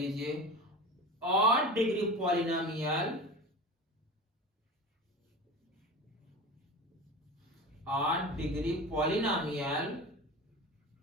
odd degree polynomial, odd degree polynomial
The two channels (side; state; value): both; normal; correlation 0.30